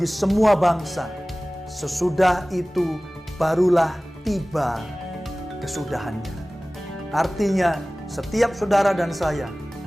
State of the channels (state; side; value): normal; both; correlation 0.98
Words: semua bangsa. Sesudah itu barulah tiba kesudahannya." Artinya setiap saudara dan saya